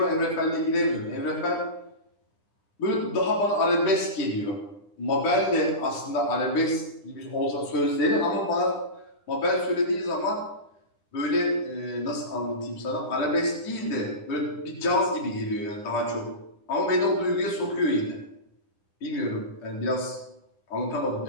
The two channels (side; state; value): right; late; 9.9 ms